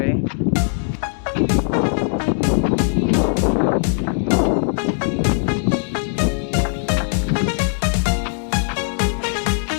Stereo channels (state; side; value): silent; right; digital silence